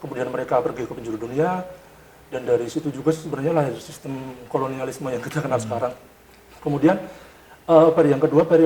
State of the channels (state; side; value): identical; both; correlation 1.00